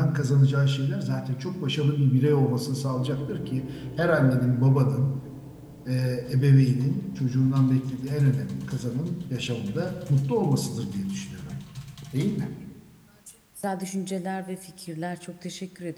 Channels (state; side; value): identical; both; correlation 1.00